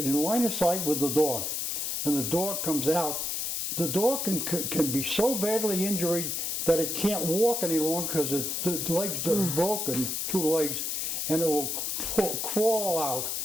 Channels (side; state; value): left; noise; hiss, 1 dB below the sound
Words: line of sight with the dog. And the dog comes out. The dog can be so badly injured that it can't walk any longer because the legs are broken, 2 legs, and it will crawl out